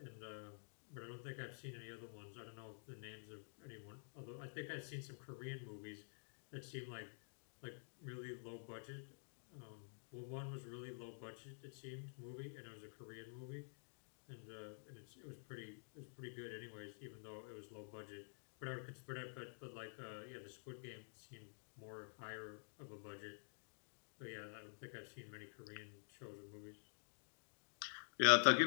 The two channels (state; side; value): silent; right; digital silence